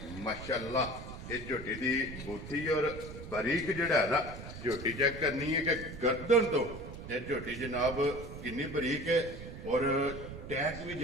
ਮਾਸ਼ਾਅੱਲਾ ਇਹ ਝੋਟੀ ਦੀ ਬੂਥੀ ਔਰ ਬਰੀਕ ਜਿਹੜਾ ਹੈ ਨਾ ਝੋਟੀ ਚੈੱਕ ਕਰਨੀ ਹੈ ਕਿ ਗਰਦਨ ਤੋਂ ਇਹ ਝੋਟੀ ਜਨਾਬ ਕਿੰਨੀ ਬਰੀਕ ਹੈ। ਔਰ ਟੈਗ ਵੀ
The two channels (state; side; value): noise; right; rumble, 11 dB below the sound